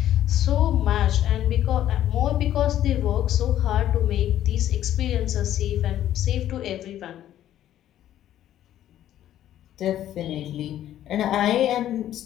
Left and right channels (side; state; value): right; quieter; 12.0 dB